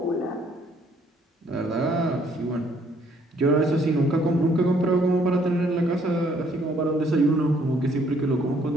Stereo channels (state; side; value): normal; both; correlation 0.65